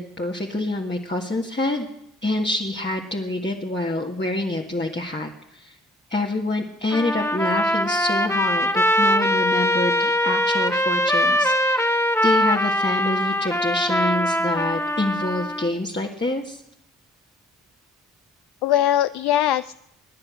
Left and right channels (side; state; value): both; normal; correlation 0.58